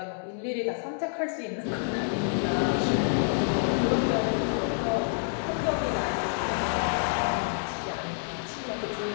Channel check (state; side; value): silent; right; digital silence